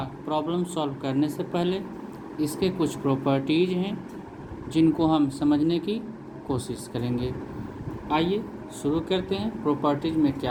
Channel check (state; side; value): identical; both; correlation 1.00